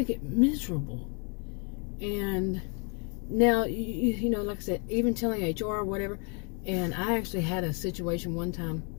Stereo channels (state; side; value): quieter; right; 37.1 dB